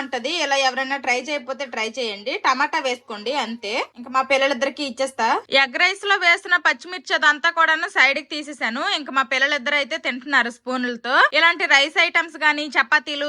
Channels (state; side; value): identical; both; correlation 1.00